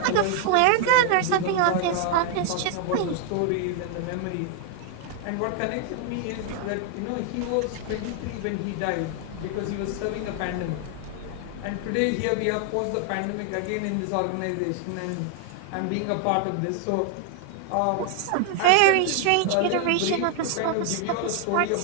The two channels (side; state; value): both; different; correlation 0.00